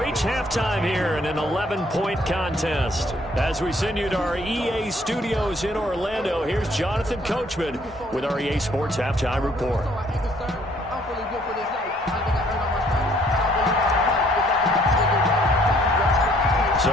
halftime here in an 11-point contest. As we send you to our EA studios in Orlando, here's Jonathan Coachman with our EA Sports Halftime Report. So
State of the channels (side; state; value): both; normal; correlation 0.63